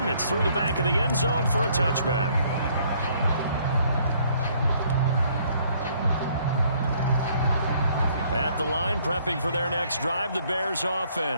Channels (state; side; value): inverted; both; correlation -0.64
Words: It's through the back of the end zone for a touchback. At the line, prepping for their next drive, the Bears